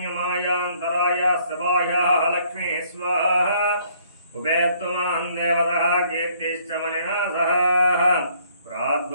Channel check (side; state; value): both; inverted; correlation -0.63